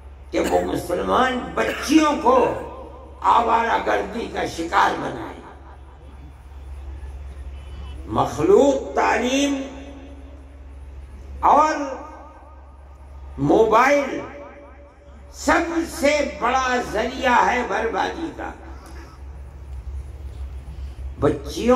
کہ وہ مسلمان بچیوں کو آوارہ گردی کا شکار بنائے۔ مخلوط تعلیم اور موبائل سب سے بڑا ذریعہ ہے بربادی کا۔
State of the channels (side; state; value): both; identical; correlation 1.00